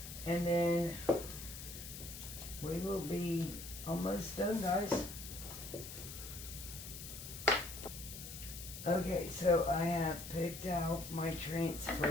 And then we will be almost done, guys. Okay, so I have picked out my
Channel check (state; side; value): noise; left; hiss, 10 dB below the sound